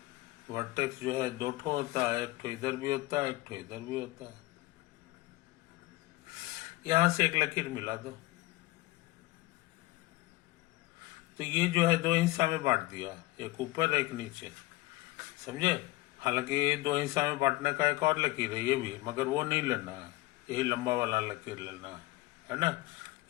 वर्टेक्स जो है 2 ठो होता है, एक ठो इधर भी होता है, एक ठो इधर भी होता है। यहां से एक लकीर मिला दो तो ये जो है 2 हिस्सा में बांट दिया, एक ऊपर एक नीचे, समझे? हालांकि 2 हिस्सा में बांटने का एक और लकीर है ये भी, मगर वो नहीं लेना है, यही लंबा वाला लकीर लेना है ना?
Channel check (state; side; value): quieter; right; 19.7 dB